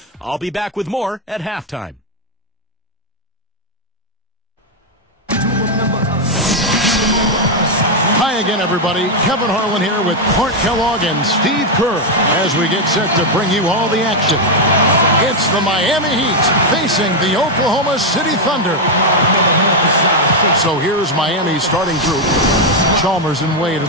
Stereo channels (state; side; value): normal; both; correlation 0.02